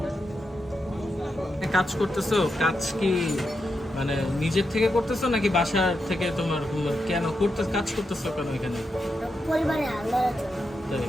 কাজ করতেছো, কাজ কি মানে নিজের থেকে করতেছো নাকি বাসার থেকে? তোমার কেন কাজ করতেছো কেন এখানে? পরিবারে তাই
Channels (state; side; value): normal; both; correlation 0.86